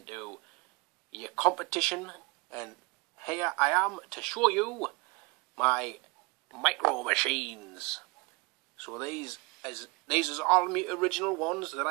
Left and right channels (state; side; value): quieter; left; 27.0 dB